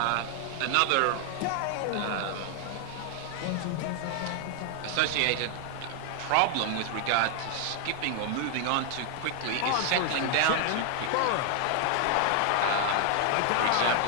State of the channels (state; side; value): different; both; correlation 0.00